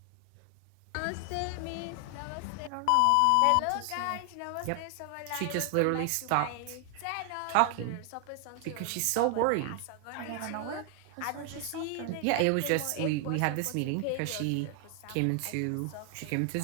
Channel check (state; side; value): different; both; correlation 0.00